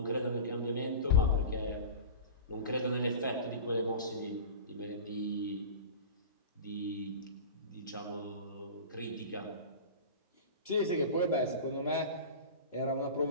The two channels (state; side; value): inverted; both; correlation -0.32